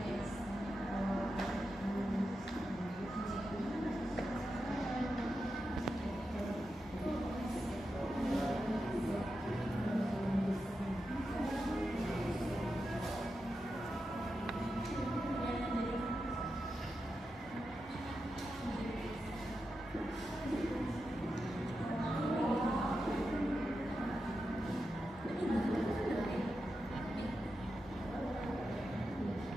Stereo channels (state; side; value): normal; both; correlation 0.89